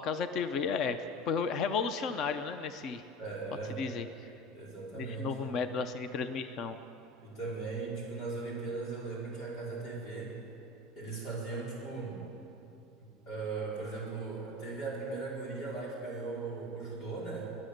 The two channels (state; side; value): normal; both; correlation 0.34